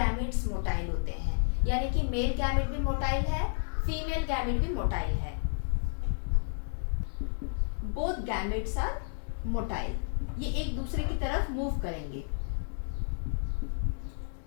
मोटाइल होते हैं, यानी कि मेल गैमेट भी मोटाइल है, फीमेल गैमेट भी मोटाइल है। बोथ गैमेट्स आर मोटाइल, ये एक दूसरे की तरफ मूव करेंगे।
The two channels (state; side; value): silent; right; digital silence